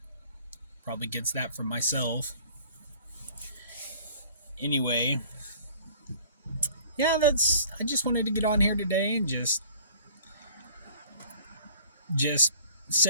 Probably gets that from myself. Anyway, yeah, I just wanted to get on here today and just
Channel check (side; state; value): both; inverted; correlation -0.51